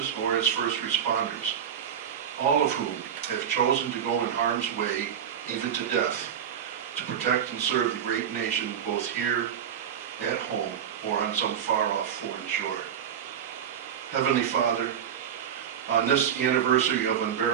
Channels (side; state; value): left; quieter; 8.7 dB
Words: or as first responders, all of whom have chosen to go in harm's way, even to death, to protect and serve the great nation both here at home or on some far-off foreign shore. Heavenly Father, on this anniversary of